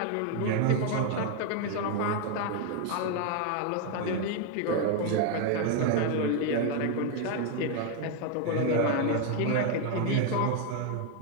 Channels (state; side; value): different; both; correlation 0.01